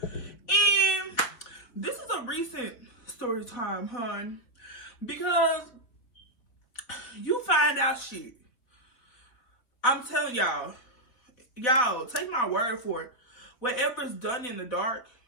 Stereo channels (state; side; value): late; right; 3.9 ms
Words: And this is a recent story time, hun. Because you find out shit. I'm telling y'all, take my word for it. Whatever's done in the dark